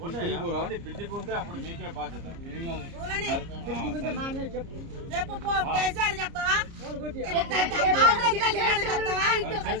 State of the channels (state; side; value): late; left; 30 ms